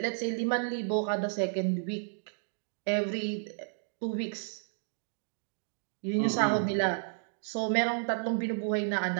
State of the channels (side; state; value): left; silent; digital silence